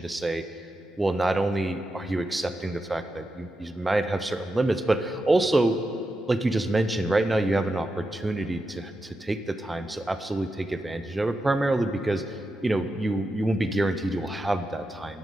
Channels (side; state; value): both; normal; correlation 0.88